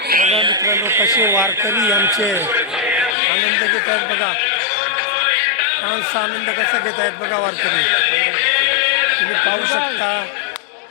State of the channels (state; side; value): drops out; right; at 3.2 s